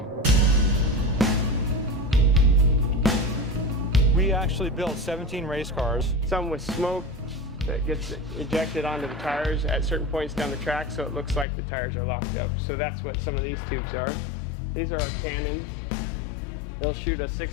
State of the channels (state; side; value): drops out; right; at 11.5 s